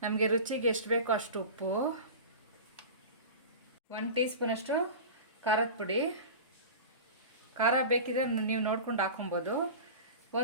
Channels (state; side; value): inverted; both; correlation -0.32